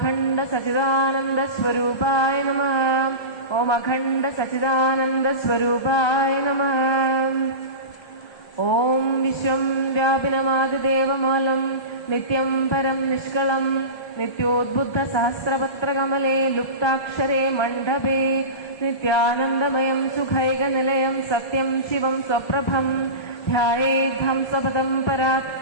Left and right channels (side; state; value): right; late; 1.3 ms